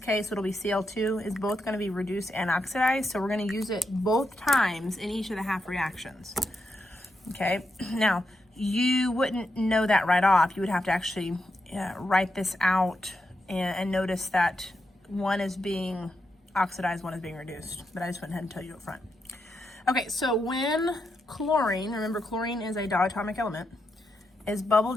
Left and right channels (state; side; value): normal; both; correlation 0.84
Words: it'll be Cl2, is both going to be reduced and oxidized, so we're going to use it both times in each of the half reactions. Okay, now you wouldn't know that right off. You would have to actually write this out and notice that one is being oxidized, one is being reduced, but I just went ahead and tell you up front. Okay, so when chlorine, remember chlorine is a diatomic element, is bubbled